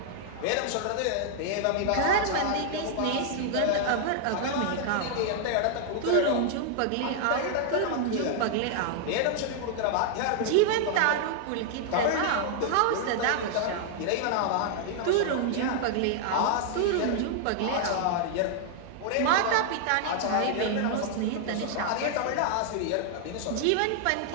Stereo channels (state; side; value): different; both; correlation 0.00